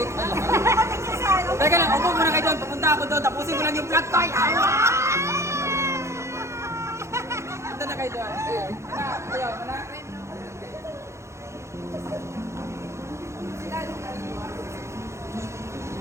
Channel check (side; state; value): left; late; 0.14 ms